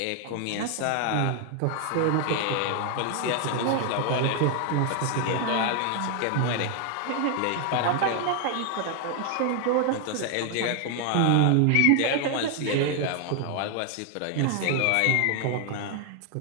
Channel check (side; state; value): both; different; correlation 0.00